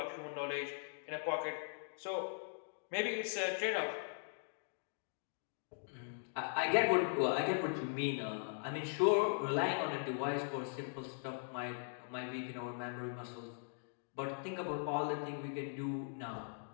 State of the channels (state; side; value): silent; right; digital silence